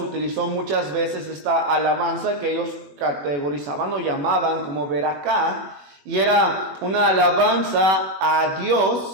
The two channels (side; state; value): left; late; 21 ms